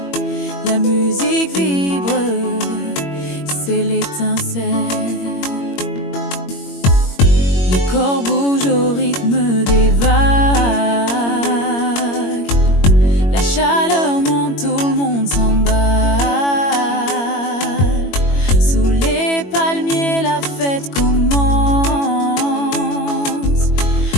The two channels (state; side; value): late; right; 21 ms